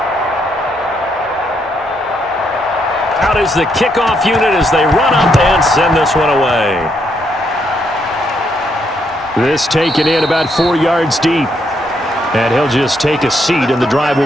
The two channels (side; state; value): both; normal; correlation 0.76